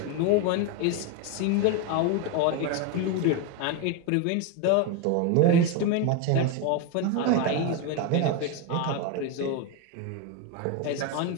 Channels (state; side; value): different; both; correlation 0.02